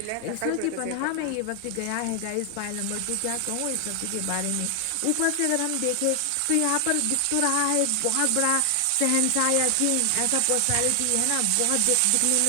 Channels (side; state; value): both; different; correlation 0.00